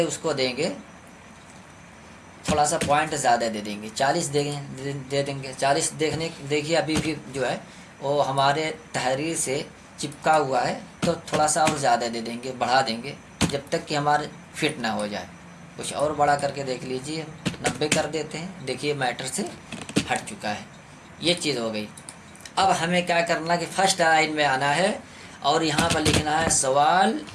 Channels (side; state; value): both; identical; correlation 1.00